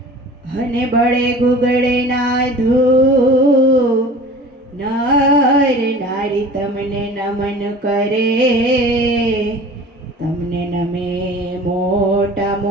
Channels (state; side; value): normal; both; correlation 0.42